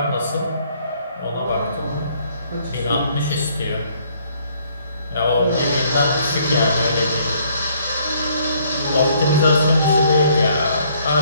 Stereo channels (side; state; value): both; inverted; correlation -0.64